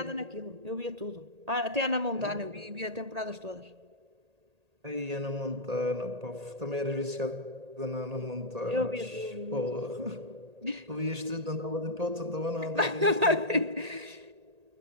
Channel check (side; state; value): left; late; 1.8 ms